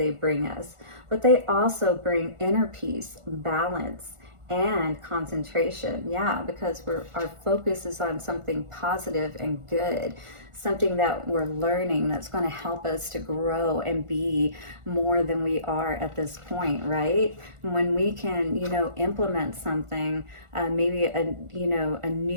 bring us. But they also bring inner peace, balance, and concentration. Yeah, because our focus is on something positive and good, something that we're learning that's going to help us to grow and be more than we are at this point, right? When we can, you know, implement something, maybe a, you know, a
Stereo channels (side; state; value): left; late; 1.4 ms